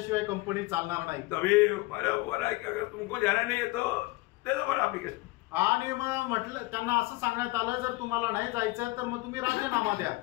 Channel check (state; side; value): quieter; right; 21.4 dB